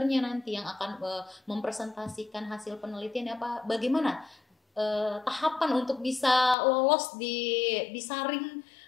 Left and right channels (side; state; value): right; drops out; at 6.6 s